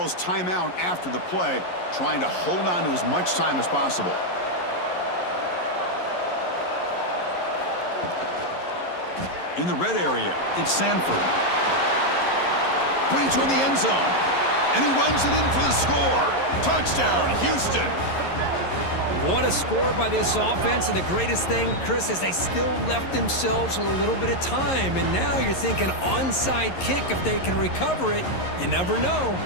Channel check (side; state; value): right; late; 11 ms